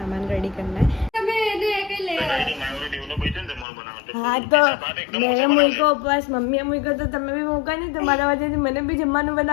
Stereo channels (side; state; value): right; drops out; at 3.7 s